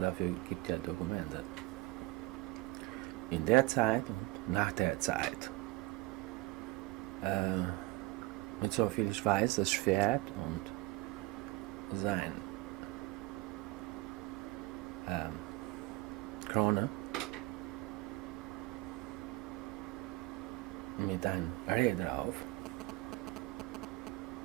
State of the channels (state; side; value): quieter; left; 20.5 dB